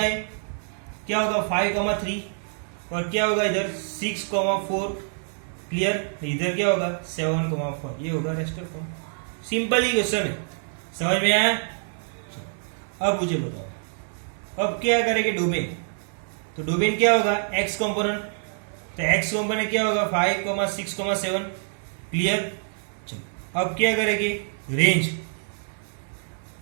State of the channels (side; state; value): left; silent; digital silence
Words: है, क्या होगा 5, 3 और क्या होगा इधर 6, 4 क्लियर? इधर क्या होगा 7,4 ये होगा रेस्टर फॉर्म। सिंपल ही क्वेश्चन है, समझ में आया? चलो, अब मुझे बताओ अब क्या करेंगे डोमेन। तो डोमेन क्या होगा एक्स कंपोनेंट, तो एक्स कंपोनेंट क्या होगा 5,6,7 क्लियर? चलो अब क्या करेंगे रेंज,